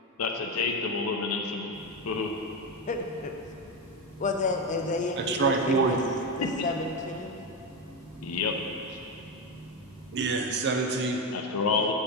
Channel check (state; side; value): normal; both; correlation 0.13